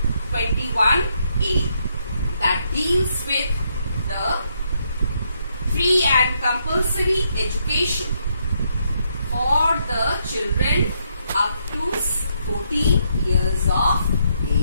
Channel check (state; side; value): inverted; both; correlation -0.76